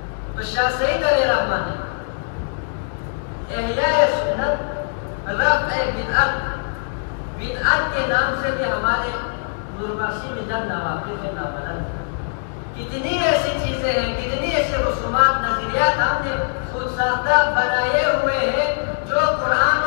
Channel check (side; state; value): right; silent; digital silence